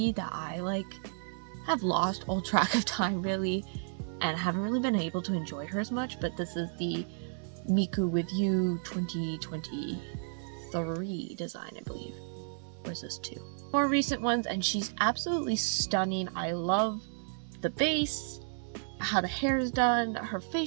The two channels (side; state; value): left; silent; 56 dB below the other